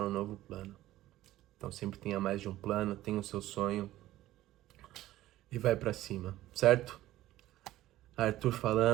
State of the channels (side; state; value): left; quieter; 15.2 dB